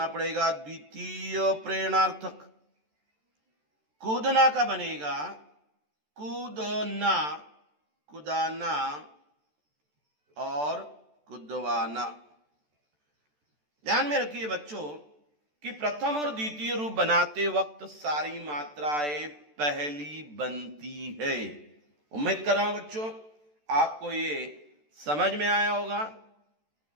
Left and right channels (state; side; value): late; left; 14 ms